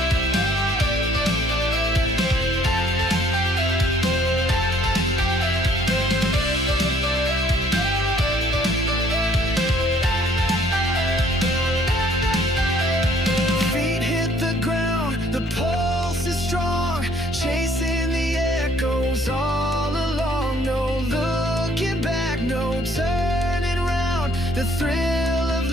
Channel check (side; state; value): both; normal; correlation 0.61